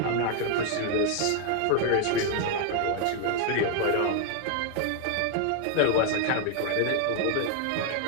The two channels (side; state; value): both; different; correlation 0.00